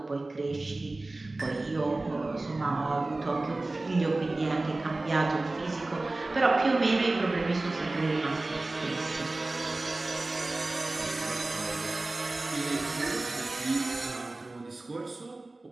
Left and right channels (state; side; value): quieter; left; 3.0 dB